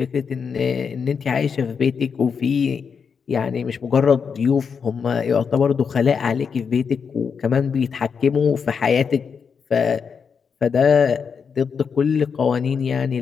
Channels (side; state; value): right; quieter; 6.2 dB